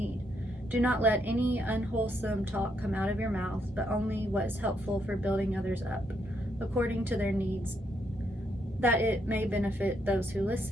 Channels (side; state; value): both; normal; correlation 0.76